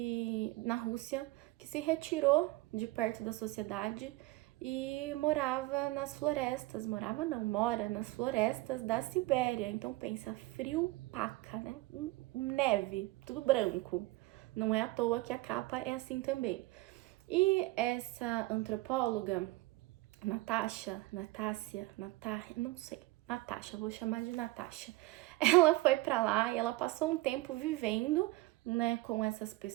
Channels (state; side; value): quieter; left; 20.0 dB